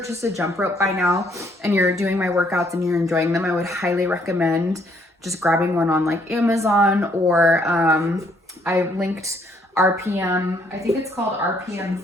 a jump rope by now and you're doing my workouts and you're enjoying them, I would highly recommend just grabbing one on like Amazon or I linked RPM, I think it's called RPM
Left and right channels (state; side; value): normal; both; correlation 0.68